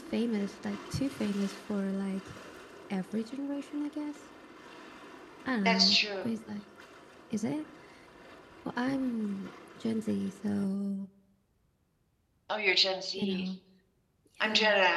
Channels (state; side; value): identical; both; correlation 1.00